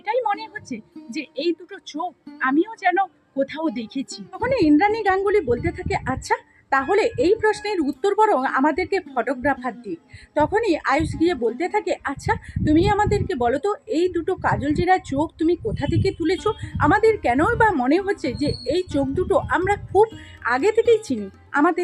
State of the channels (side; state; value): both; identical; correlation 1.00